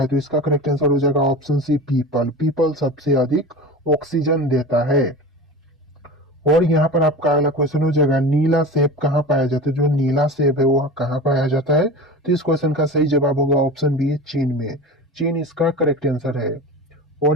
तो इसका करेक्ट आंसर हो जाएगा ऑप्शन सी, पीपल। पीपल सबसे अधिक ऑक्सीजन देता है। और यहाँ पर आपका अगला क्वेश्चन हो जाएगा, नीला सेब कहाँ पाया जाता है? जो नीला सेब है वो कहाँ पाया जाता है? तो इस क्वेश्चन का सही जवाब होगा ऑप्शन बी, चीन में। चीन इसका करेक्ट आंसर है।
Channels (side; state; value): both; normal; correlation 0.31